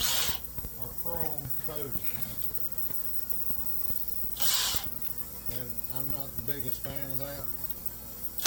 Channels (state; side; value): identical; both; correlation 1.00